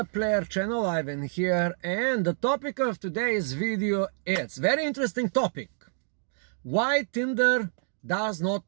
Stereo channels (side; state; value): left; silent; digital silence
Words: Player channel. Ivan here, and the topic of today's video is very interesting topic. Why Tinder does